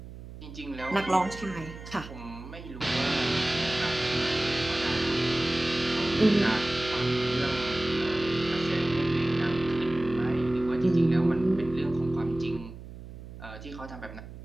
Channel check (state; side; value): noise; right; hum, 14 dB below the sound